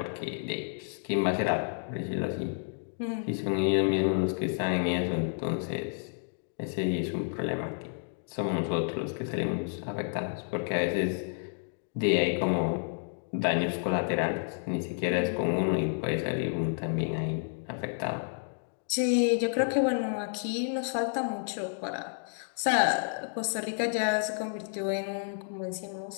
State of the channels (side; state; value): right; silent; digital silence